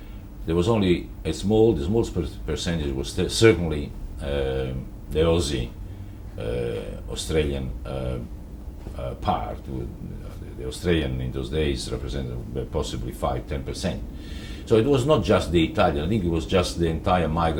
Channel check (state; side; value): identical; both; correlation 1.00